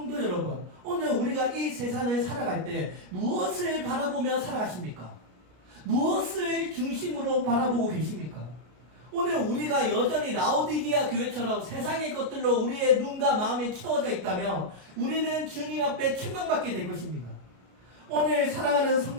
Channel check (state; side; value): late; left; 33 ms